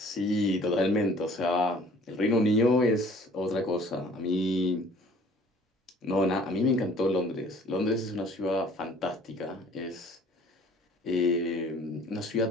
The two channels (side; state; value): both; normal; correlation 0.53